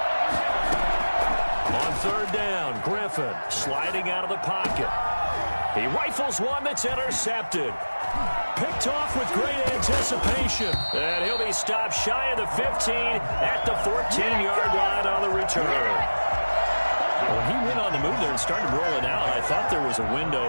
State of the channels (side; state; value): both; inverted; correlation -1.00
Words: Third down, Griffin sliding out of the pocket. He rifles one that's intercepted. Picked off with great anticipation. And he'll be stopped shy of the 15 at the 14-yard line on the return. When he went on the move there and started rolling out, I thought there was a